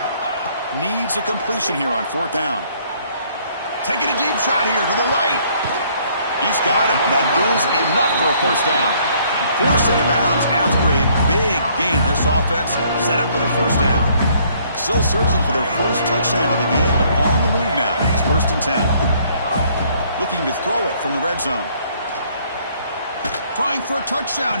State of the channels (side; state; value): both; inverted; correlation -0.63